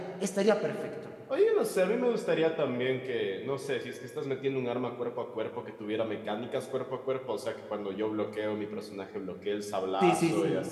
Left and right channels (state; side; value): identical; both; correlation 1.00